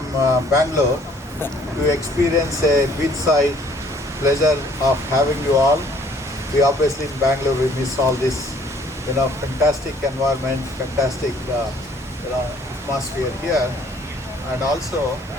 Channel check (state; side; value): normal; both; correlation 0.59